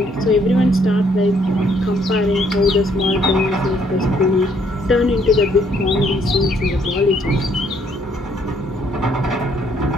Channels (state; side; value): normal; both; correlation 0.67